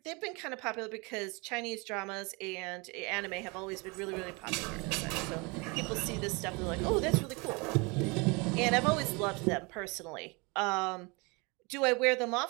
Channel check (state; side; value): quieter; left; 28.3 dB